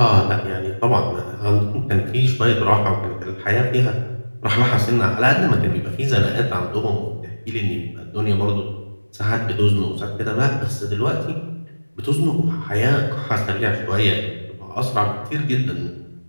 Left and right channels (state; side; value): inverted; both; correlation -1.00